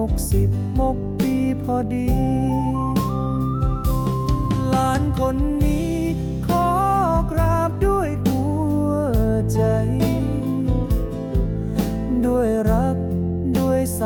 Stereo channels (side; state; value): both; identical; correlation 1.00